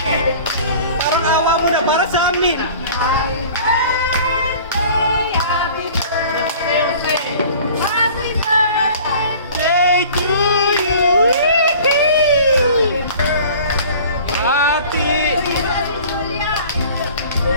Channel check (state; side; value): inverted; both; correlation -0.45